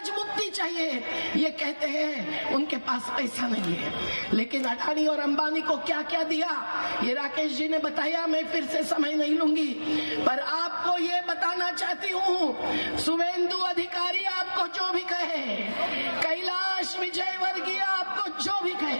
मुक्ति चाहिए। ये कहते हैं उनके पास पैसा नहीं है, लेकिन अडानी और अंबानी को क्या क्या दिया ये राकेश जी ने बताया, मैं फिर से समय नहीं लूंगी। पर आपको ये बताना चाहती हूँ, शुभेंदु अधिकारी आपको जो भी कहे, कैलाश विजयवर्गीय आपको जो भी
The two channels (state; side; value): inverted; both; correlation -1.00